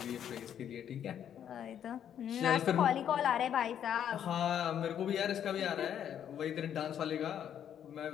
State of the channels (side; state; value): right; quieter; 9.4 dB